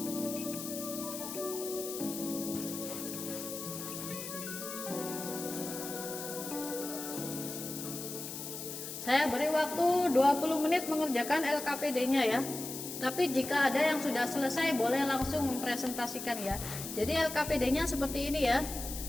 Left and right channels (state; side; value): noise; left; hiss, 8 dB below the sound